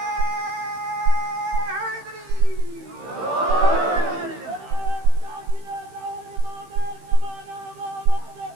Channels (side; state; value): left; late; 15 ms